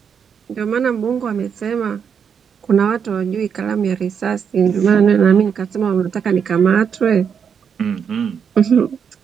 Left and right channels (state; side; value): quieter; left; 7.1 dB